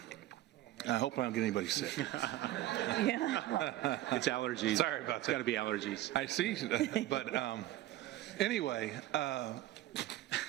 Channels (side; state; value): left; quieter; 14.9 dB